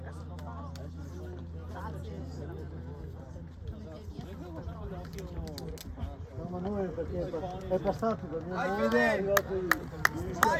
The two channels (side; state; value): both; identical; correlation 1.00